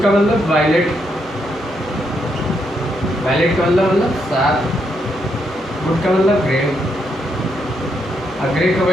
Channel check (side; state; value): both; normal; correlation 0.78